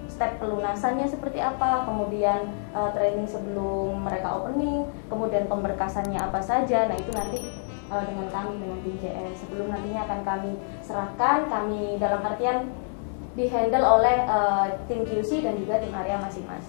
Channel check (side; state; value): right; silent; 60 dB below the other